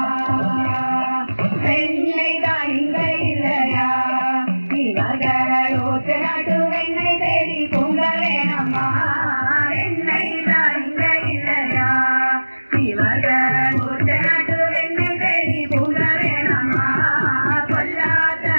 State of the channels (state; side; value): inverted; both; correlation -1.00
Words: பெண்ணை தான் இங்க இல்லையா இவர்கள் ஊற்று நாட்டு வெண்ணை தேடி பொங்க வேணம்மா. என்னை தான் இங்க இல்லையா இவர்கள் ஊற்று நாட்டு வெண்ணை தேடி பொங்க வேணம்மா. பொல்லாத